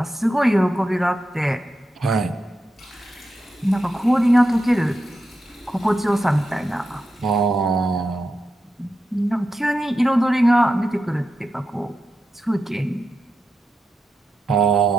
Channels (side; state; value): both; normal; correlation 0.88